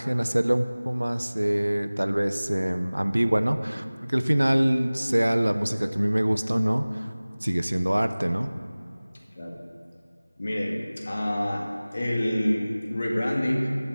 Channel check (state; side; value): inverted; both; correlation -0.99